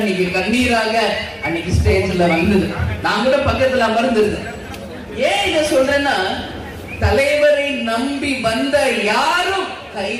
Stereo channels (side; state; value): both; identical; correlation 1.00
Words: கண்ணீராக அன்னைக்கு ஸ்டேஜ்ல வந்தது. நான் கூட பக்கத்துல அமர்ந்திருந்தேன். ஏன் இத சொல்றேன்னா, தலைவரை நம்பி வந்த யாரும்